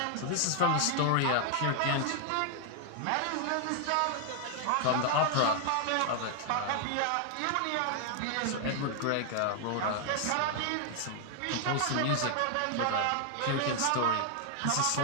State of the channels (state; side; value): different; both; correlation 0.00